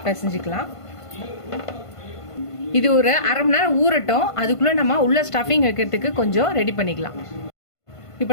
பிசைஞ்சிக்கலாம். இது ஒரு அரை மணி நேரம் ஊறட்டும். அதுக்குள்ளே நம்ம உள்ள ஸ்டஃபிங் வைக்கிறதுக்கு கொஞ்சம் ரெடி பண்ணிக்கலாம். இப்போ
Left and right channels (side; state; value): right; late; 1.5 ms